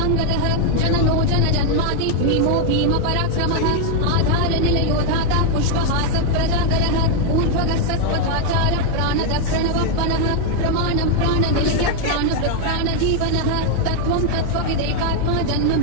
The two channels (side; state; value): both; different; correlation 0.00